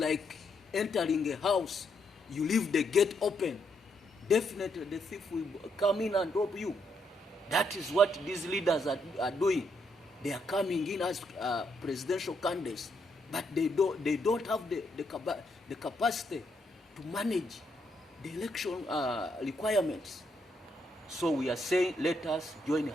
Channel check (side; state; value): both; normal; correlation 0.76